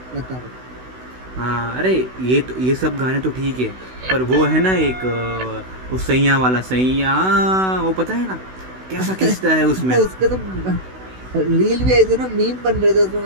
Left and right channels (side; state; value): left; late; 16 ms